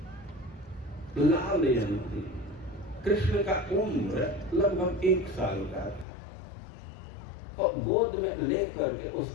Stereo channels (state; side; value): drops out; right; at 6.1 s